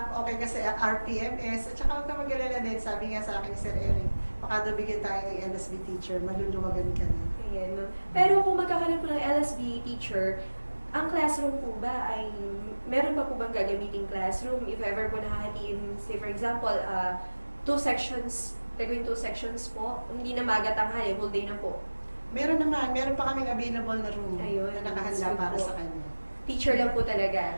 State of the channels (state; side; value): inverted; both; correlation -1.00